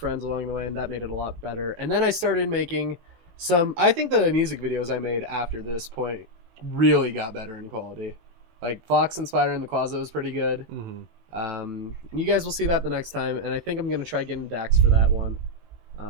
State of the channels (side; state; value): left; late; 18 ms